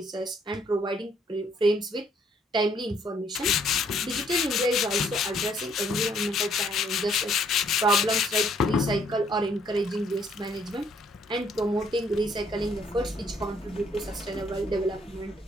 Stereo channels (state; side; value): normal; both; correlation 0.66